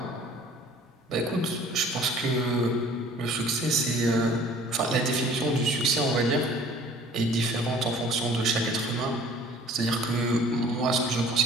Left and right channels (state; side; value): normal; both; correlation 0.51